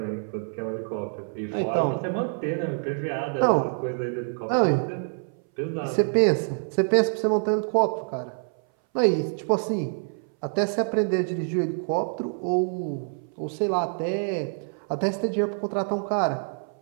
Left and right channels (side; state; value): left; silent; 59 dB below the other